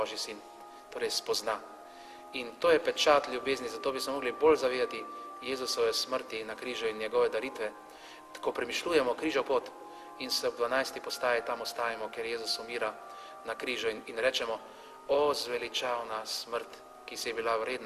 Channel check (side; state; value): both; identical; correlation 1.00